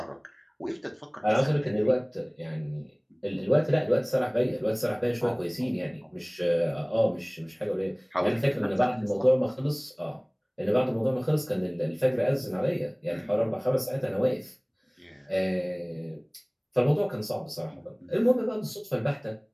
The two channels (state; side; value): identical; both; correlation 1.00